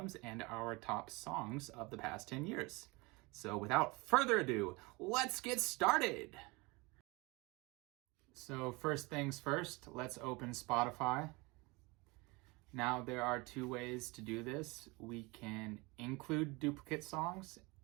and our top songs of the past 10 years. So without further ado, let's get started. So first things first, let's open Spotify. Now there are two ways to do this. We can include duplicate songs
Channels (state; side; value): quieter; left; 25.4 dB